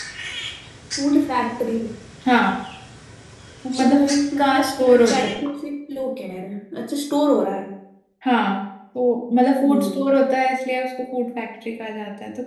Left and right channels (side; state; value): both; identical; correlation 1.00